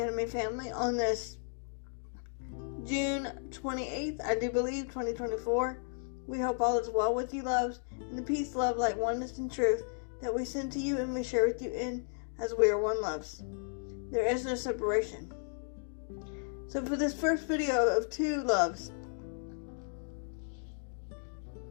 family on this June 28th, I do believe, 2024. We hope all is well with you, loves, and the peace, love, light, oneness, and truth that we send to you and we share with you in as we are one, loves. There is no separation. So for this first video of 2 loves,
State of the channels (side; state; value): right; silent; digital silence